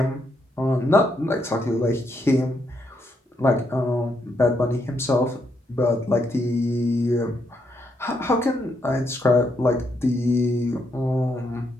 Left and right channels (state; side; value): normal; both; correlation 0.77